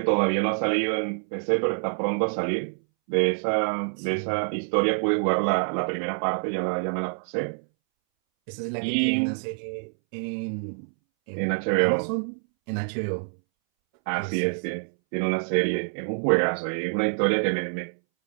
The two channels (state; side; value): silent; left; 61 dB below the other